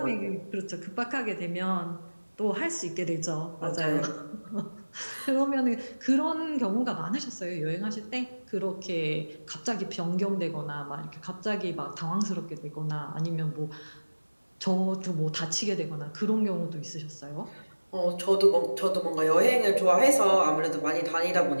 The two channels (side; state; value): both; inverted; correlation -1.00